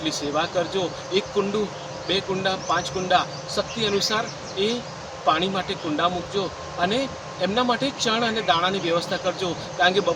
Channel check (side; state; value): both; identical; correlation 1.00